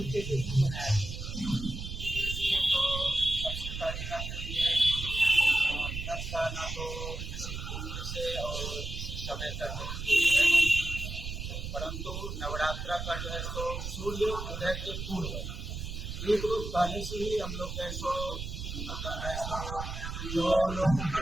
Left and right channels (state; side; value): noise; right; rumble, 6 dB below the sound